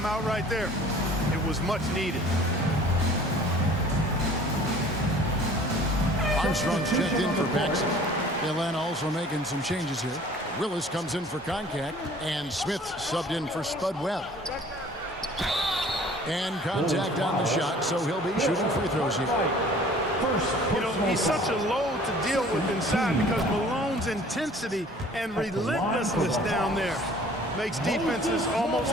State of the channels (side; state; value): both; normal; correlation 0.50